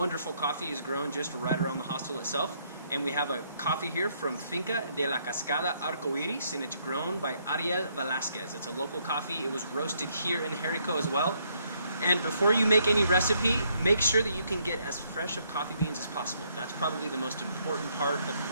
coffee is grown just right around the hostel itself, and we have a coffee here from Finca de la Cascada Arcoiris, and it's grown by Ariel Velasquez. It's a local coffee. It was roasted here in Jerico as well. And before you make any recipe, make sure that you can get as fresh of coffee beans as possible. That's probably the most important part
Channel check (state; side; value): inverted; both; correlation -0.72